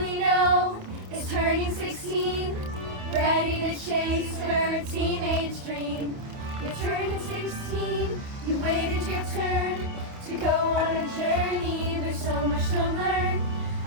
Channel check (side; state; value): left; late; 28 ms